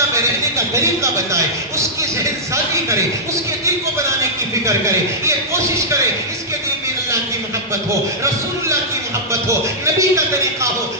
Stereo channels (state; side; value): normal; both; correlation -0.12